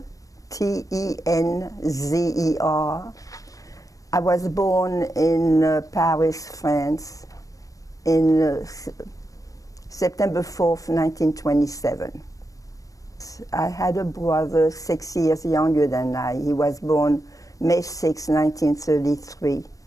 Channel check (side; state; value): right; late; 0.16 ms